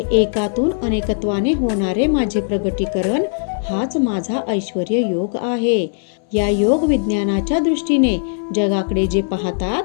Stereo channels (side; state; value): right; silent; 65 dB below the other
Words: एकातून अनेकत्वाने होणारे माझे प्रगटीकरण हाच माझा ऐश्वर्य योग आहे. या योग विज्ञानाच्या दृष्टीने जगाकडे जे पाहतात